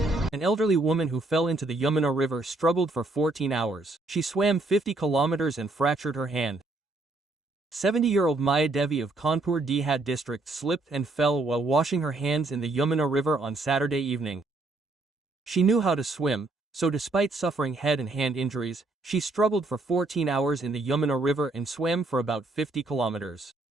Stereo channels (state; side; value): quieter; left; 3.1 dB